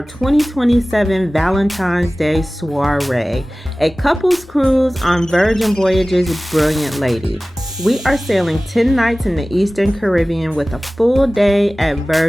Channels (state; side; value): normal; both; correlation 0.98